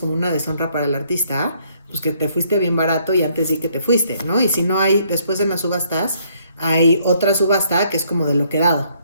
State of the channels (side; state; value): both; inverted; correlation -0.67